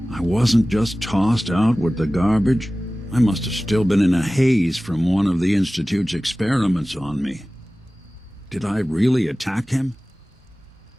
I wasn't just tossed out with the garbage. I must have still been in a haze from one of the Institute's experiments on me. Did I really attack him?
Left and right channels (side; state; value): both; normal; correlation 0.97